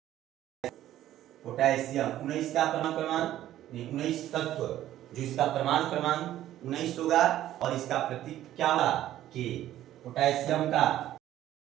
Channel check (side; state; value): left; quieter; 13.0 dB